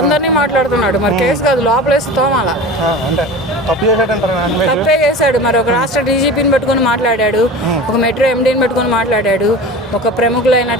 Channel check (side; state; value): both; normal; correlation 0.35